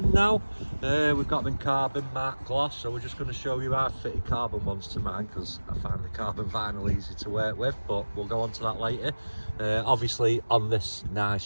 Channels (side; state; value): both; inverted; correlation -1.00